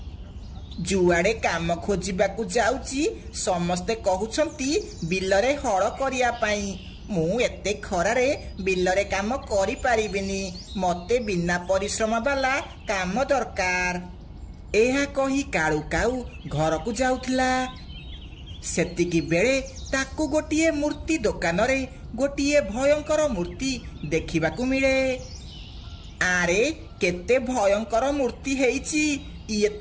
जुआड़े काम खोजिबाकू जाउची समस्ते कहउछंती बिलरे हळ करिया पाई। मु एते खरारे बिलरे काम करि पारिबिनी, मते बिना परिश्रम वाला काम दरकार। एहा कही काळू काऊ घर को जाउथिला। सेतिकी बेले ताकू गोटिए मूर्ति दुकान रे गोटिए भयंकर मूर्ति देखिबाकू मिले। आरे केते भयंकर मूर्ति हेइची, ये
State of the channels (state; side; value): identical; both; correlation 1.00